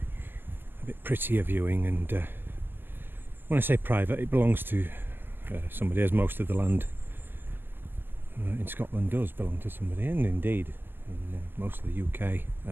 bit prettier viewing. And when I say private, it belongs to somebody, as most of the land in Scotland does belong to somebody, and indeed in most of the UK,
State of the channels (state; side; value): late; left; 0.10 ms